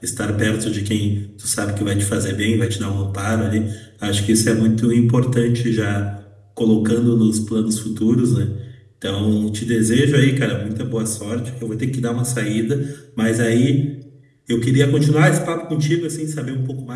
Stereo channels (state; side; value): identical; both; correlation 1.00